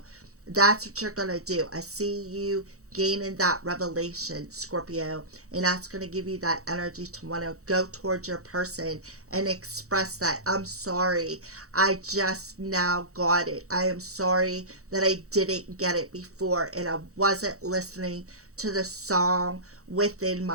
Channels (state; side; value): late; left; 0.65 ms